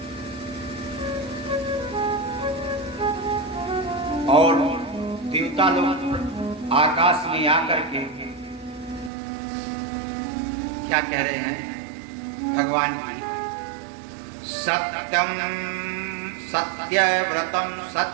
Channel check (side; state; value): left; drops out; at 9.1 s